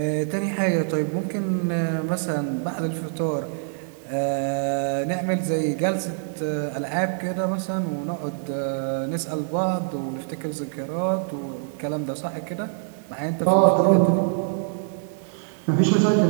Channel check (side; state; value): left; silent; digital silence